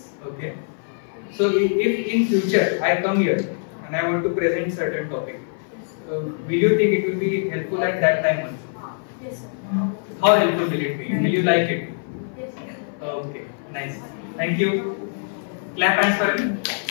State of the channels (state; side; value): silent; right; 57 dB below the other